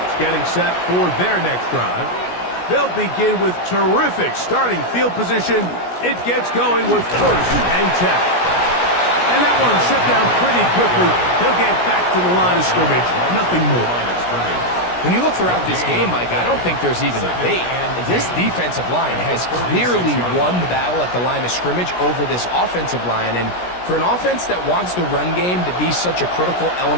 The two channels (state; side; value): late; right; 17 ms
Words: getting set for their next drive. They'll begin with terrific starting field position. It gets going with 1st and 10. And that one shut down pretty quickly. He'll get back to the line of scrimmage. Nothing more. When you look throughout this game, Mike, I don't think there's even a debate. This defensive line has clearly won the battle at the line of scrimmage over this offensive line. And for an offense that wants the run game to be such a critical